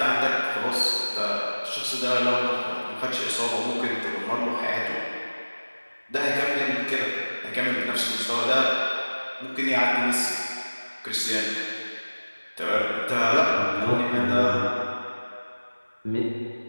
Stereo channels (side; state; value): both; inverted; correlation -1.00